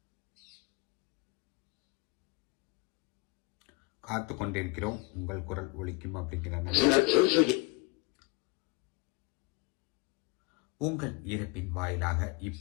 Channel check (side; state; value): right; quieter; 27.4 dB